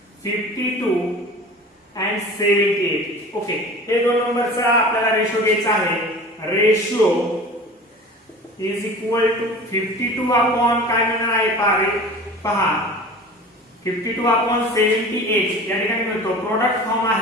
52 and 78। ओके, हे दोन नंबरचा आपल्याला रेशो घ्यायचा आहे। Ratio is equal to 52 upon काय मिळणार आहे पहा 52/78। या ठिकाणी मिळतो प्रोडक्ट फॉर्म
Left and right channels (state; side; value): normal; both; correlation 0.39